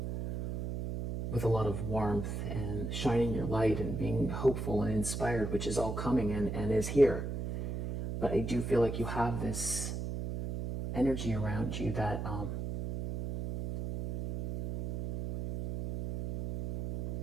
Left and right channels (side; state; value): right; noise; hum, 4 dB below the sound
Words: with a lot of warmth, and shining your light, and being hopeful and inspired, which is all coming and is here. But I do feel like you have this energy around you that